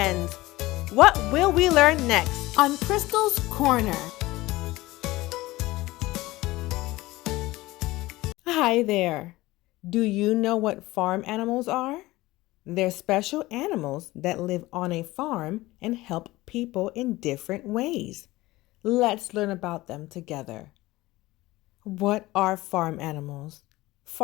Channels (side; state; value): right; quieter; 18.9 dB